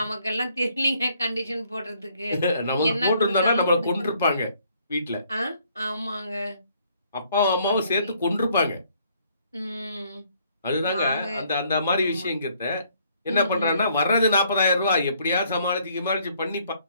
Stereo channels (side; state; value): both; inverted; correlation -0.66